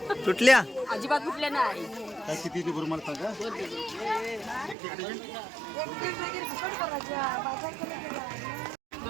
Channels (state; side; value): drops out; left; at 4.8 s